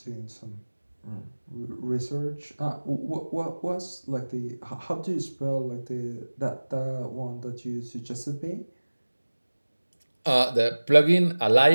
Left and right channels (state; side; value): inverted; both; correlation -1.00